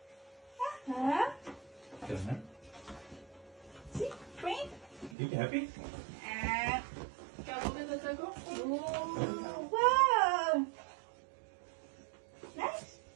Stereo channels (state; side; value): drops out; left; at 5.2 s